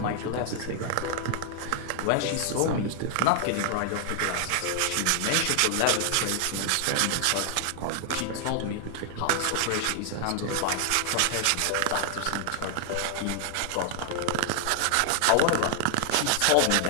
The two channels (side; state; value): both; different; correlation 0.00